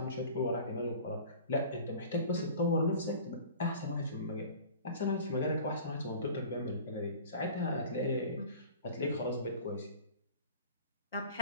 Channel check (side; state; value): both; inverted; correlation -0.41